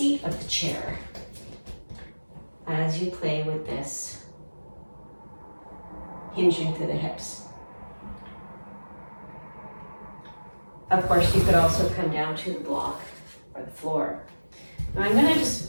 of the chair as you play with this. Hinging through the hips. Of course, you could also come down to the block or the floor. Now I'm going to just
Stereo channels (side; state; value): both; inverted; correlation -1.00